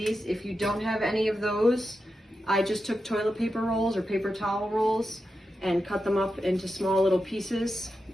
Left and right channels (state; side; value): normal; both; correlation 0.89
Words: If you don't have any of those, I just took toilet paper rolls or paper towel rolls and cut them up into small little pieces.